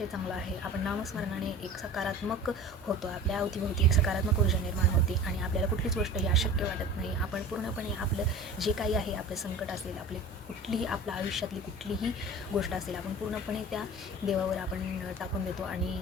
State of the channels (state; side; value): normal; both; correlation 0.38